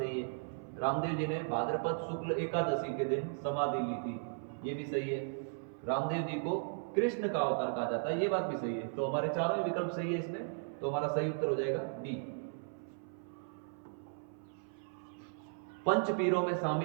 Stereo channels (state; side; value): silent; left; 54 dB below the other